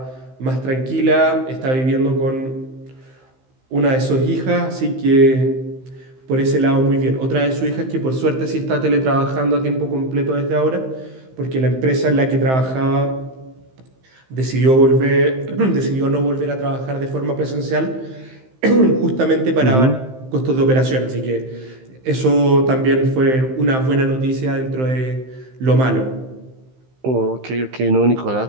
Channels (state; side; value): late; left; 15 ms